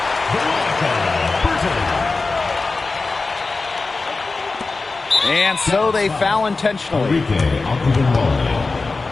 And so they foul intentionally.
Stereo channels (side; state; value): right; quieter; 3.8 dB